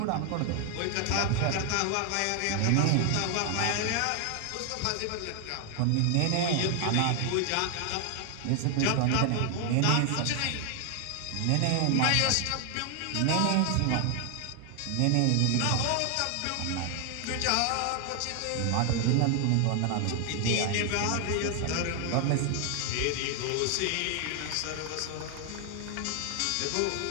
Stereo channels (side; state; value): both; different; correlation 0.00